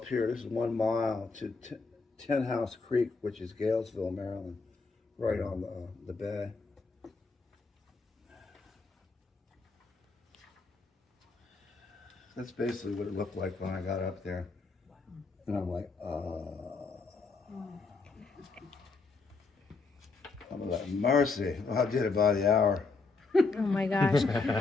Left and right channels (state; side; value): quieter; right; 4.1 dB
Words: here. This is 1 mile to Ten House Creek, which is Galesville, Maryland, right on the bay. That's basically what it looked like when I got up there. And I'm like, I'm like, mercy. Well, I did it by the hour. Oh my gosh.